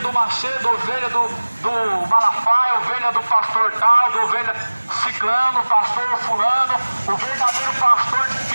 do Macedo, ovelha do Malafaia, ovelha do pastor tal, do ovelha ciclano, pastor fulano. O verdadeiro pastor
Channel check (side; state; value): both; inverted; correlation -1.00